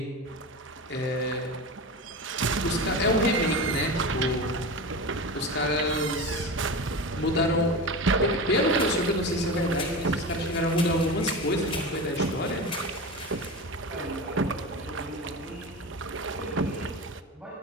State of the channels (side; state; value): both; normal; correlation 0.26